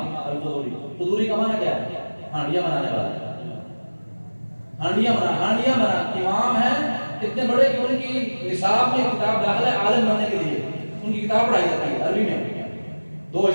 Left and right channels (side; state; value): both; inverted; correlation -1.00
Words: القدوری. قدوری کا معنی کیا ہے؟ ہانڈیاں بنانے والا، ہانڈیاں بنا امام ہیں اتنے بڑے کہ ان کی نصاب میں کتاب داخل ہے عالم بننے کے لیے. ان کی کتاب پڑھائی جاتی ہے عربی میں 2